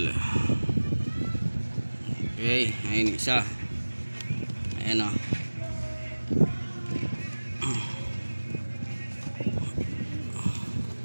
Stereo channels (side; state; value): both; inverted; correlation -1.00